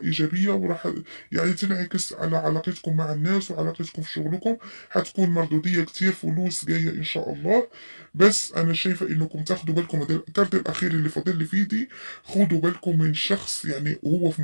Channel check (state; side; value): inverted; both; correlation -1.00